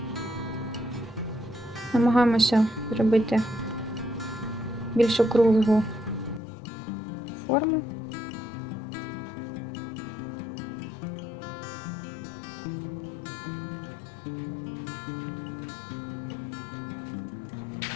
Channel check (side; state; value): right; drops out; at 6.4 s